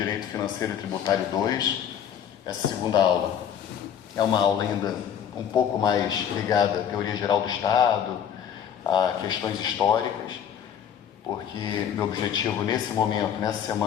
Financeiro e Tributário 2. Essa segunda aula é uma aula ainda um pouco mais ligada à teoria geral do Estado, a questões históricas, porque meu objetivo nesse momento, nessa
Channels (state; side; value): quieter; right; 8.8 dB